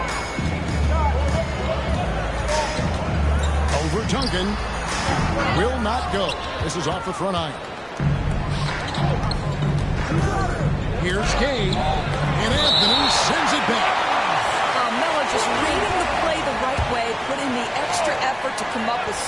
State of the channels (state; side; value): identical; both; correlation 1.00